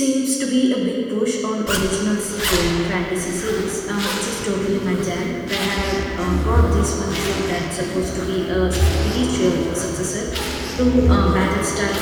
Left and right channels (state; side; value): identical; both; correlation 1.00